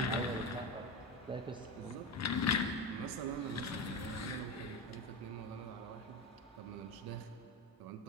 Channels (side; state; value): both; normal; correlation 0.18